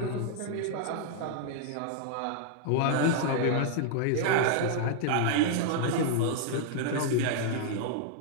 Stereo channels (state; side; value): different; both; correlation 0.00